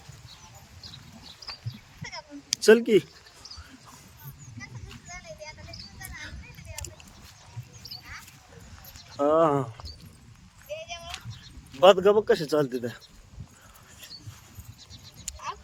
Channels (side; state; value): both; identical; correlation 1.00